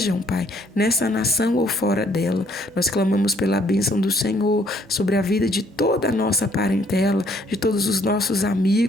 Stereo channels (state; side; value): normal; both; correlation 0.65